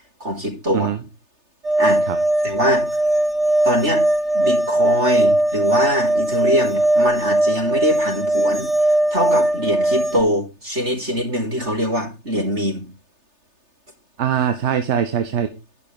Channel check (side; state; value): left; late; 3.3 ms